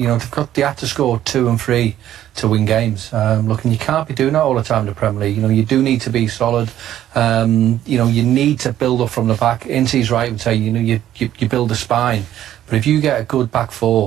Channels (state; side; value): quieter; left; 12.1 dB